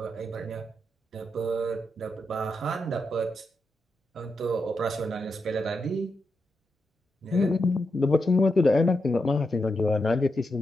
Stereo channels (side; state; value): both; normal; correlation 0.85